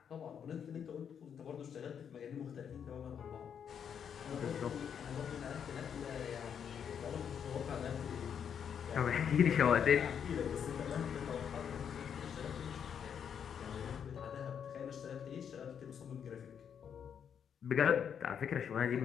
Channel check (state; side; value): quieter; right; 7.9 dB